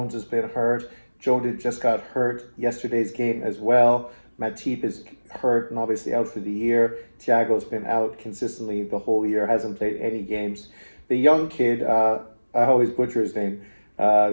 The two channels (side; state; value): both; inverted; correlation -1.00